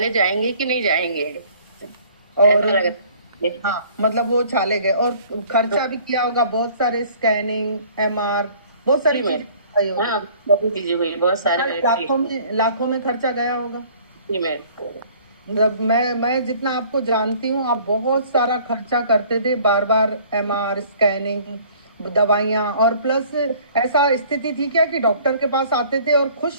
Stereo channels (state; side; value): inverted; both; correlation -0.54